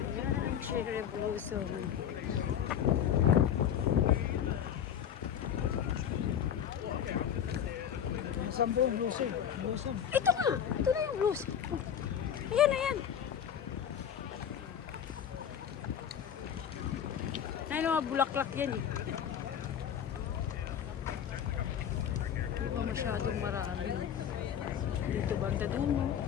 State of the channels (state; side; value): quieter; right; 9.0 dB